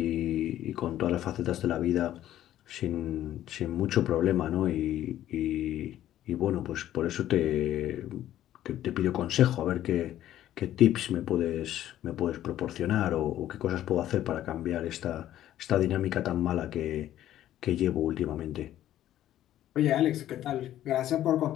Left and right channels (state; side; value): quieter; right; 12.6 dB